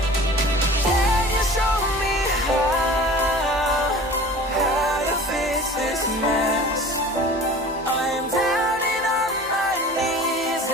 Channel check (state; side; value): normal; both; correlation 0.42